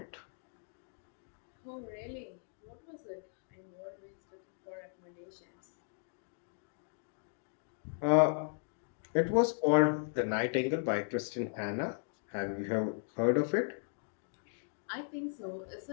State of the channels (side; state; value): right; silent; digital silence